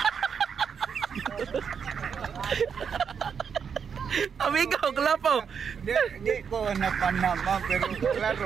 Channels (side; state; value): left; quieter; 6.8 dB